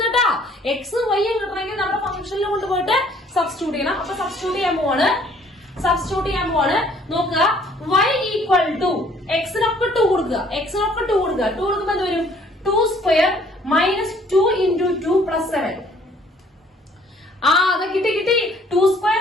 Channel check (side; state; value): both; normal; correlation 0.59